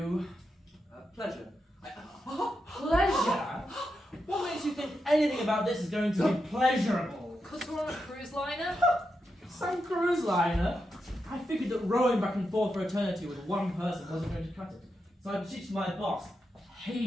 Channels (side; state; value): both; normal; correlation 0.86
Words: Pleasure. Pleasure? What makes you think anything about this is going to be pleasurable? Because we're on a cruise liner? Some cruise liner? I figured that rowing back and forth for eternity with one person wasn't going to cut it. So I beseeched my boss,